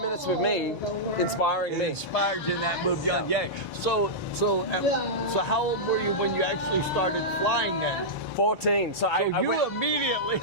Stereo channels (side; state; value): both; normal; correlation -0.11